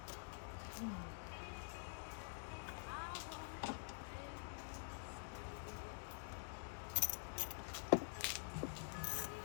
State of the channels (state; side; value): silent; right; digital silence